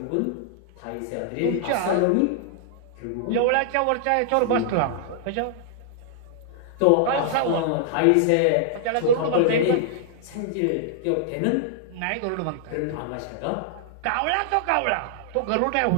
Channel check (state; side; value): different; both; correlation -0.01